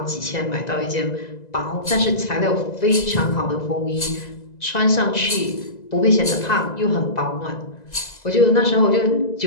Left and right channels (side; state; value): right; late; 2.0 ms